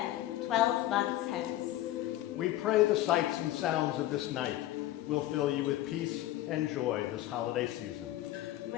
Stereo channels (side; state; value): right; quieter; 14.6 dB